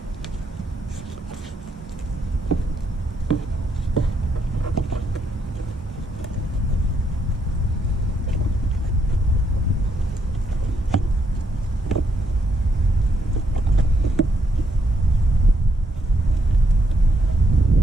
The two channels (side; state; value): both; normal; correlation 0.75